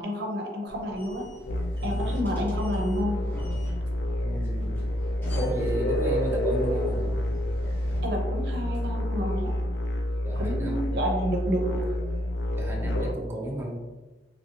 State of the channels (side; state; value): both; normal; correlation 0.75